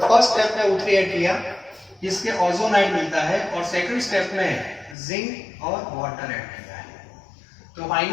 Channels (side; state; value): right; drops out; at 5.0 s